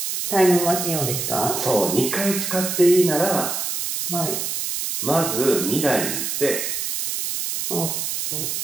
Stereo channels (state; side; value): noise; right; hiss, 2 dB below the sound